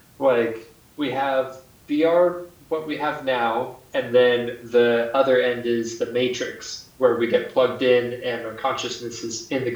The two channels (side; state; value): both; identical; correlation 1.00